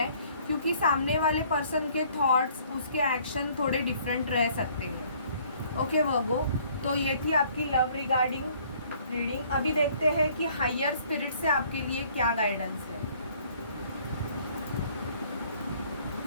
क्योंकि सामने वाले पर्सन के थॉट्स, उसके एक्शन थोड़े डिफरेंट रह सकते हैं। ओके वर्गो, तो ये थी आपकी लव रिगार्डिंग रीडिंग। अभी देखते हैं कि हायर स्पिरिट से आपके लिए क्या गाइडेंस है।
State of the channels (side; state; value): both; inverted; correlation -0.59